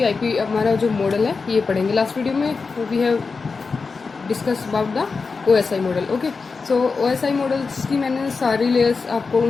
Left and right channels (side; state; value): right; quieter; 4.6 dB